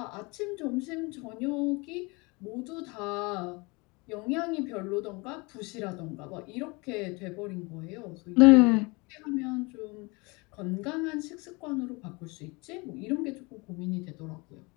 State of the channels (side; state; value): right; quieter; 26.9 dB